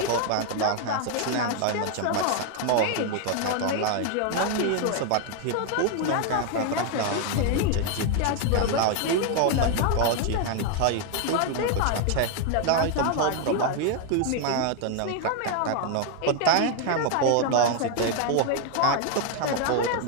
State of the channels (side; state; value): both; different; correlation 0.00